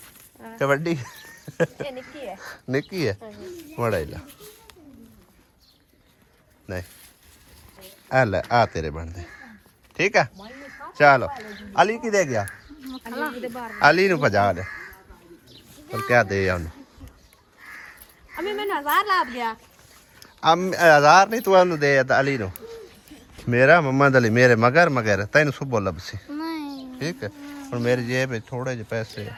क्या बड्डी निक्की है बड़ा ला नहीं अल्लाह आ तेरे बन दे ठीक है चलो अली की दे गया अली नु भजा दे पर क्या दे उन्हें अभी मैंने 1000 लाभ गया हजार नहीं तू ਉਹਨੂੰ ਦੇ ਅਲੀ ਨੂੰ ਮੇਰਾ ਮੁਹੰਮਦ ਅਲੀ ਮੇਰੇ ਮਗਰ ਤੈਨੂੰ ਸੁਬੋ ਲੱਭਸੀ नहीं ਠੀਕ ਹੈ ਹੁਣ ਮੇਰੀ ਜੇਬ ਵਿੱਚ ਥੋੜੇ ਜਿਹੇ ਪੈਸੇ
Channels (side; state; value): both; identical; correlation 1.00